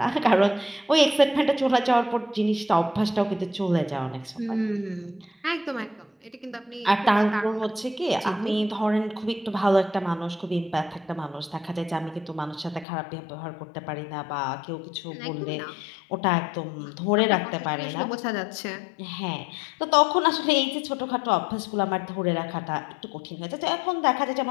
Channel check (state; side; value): drops out; right; at 12.9 s